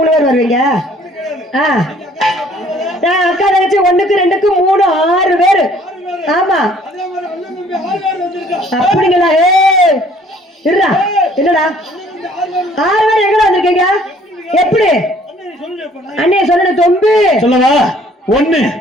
பேர் வருவீங்க? நான் அக்கா தங்கச்சி 1க்கு 2க்கு 3 6 பேரு. ஆமா, அப்படிங்களா? இருடா, என்னடா 6 பேர் எங்கடா வந்திருக்கீங்க? எப்படி அண்ணே சொல்லணும்? தொம்பு சொல்லவா? 1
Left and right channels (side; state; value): both; normal; correlation 0.58